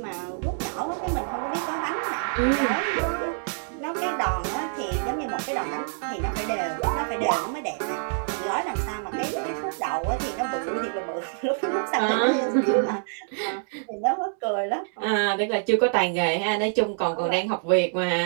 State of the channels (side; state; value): left; silent; digital silence